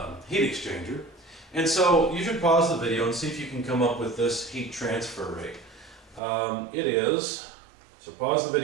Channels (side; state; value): left; drops out; at 6.2 s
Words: heat exchanger. And so you should pause the video and see if you can come up with this heat transfer rate. It is, so pause the